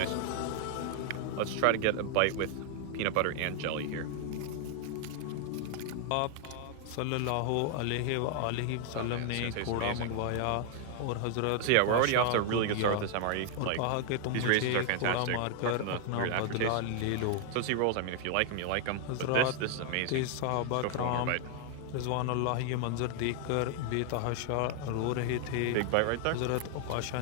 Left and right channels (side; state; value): both; different; correlation 0.00